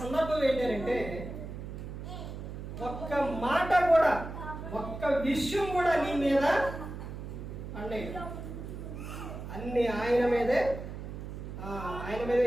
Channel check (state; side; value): noise; right; hum, 9 dB below the sound